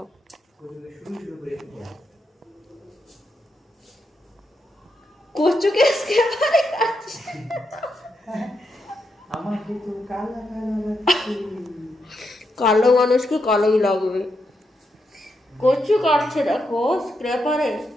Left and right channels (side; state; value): both; normal; correlation 0.83